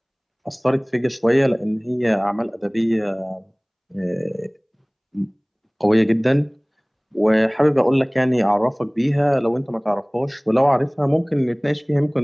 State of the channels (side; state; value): both; identical; correlation 1.00